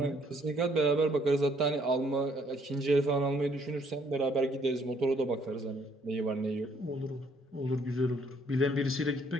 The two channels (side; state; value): both; normal; correlation 0.65